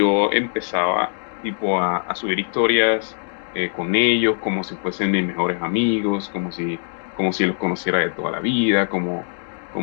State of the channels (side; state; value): right; silent; digital silence